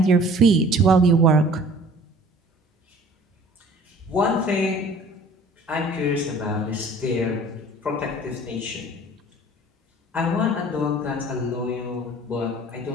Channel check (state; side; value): normal; both; correlation 0.49